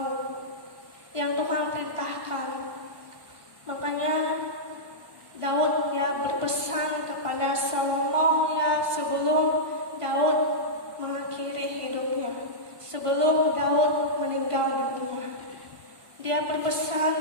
yang Tuhan perintahkan. Makanya Daud berpesan kepada Salomo sebelum Daud mengakhiri hidupnya, sebelum Daud meninggal dunia. Dia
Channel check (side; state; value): left; late; 1.5 ms